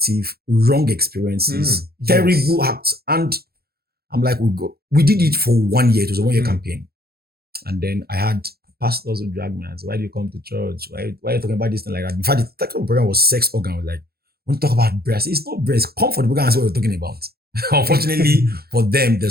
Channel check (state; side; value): late; left; 0.45 ms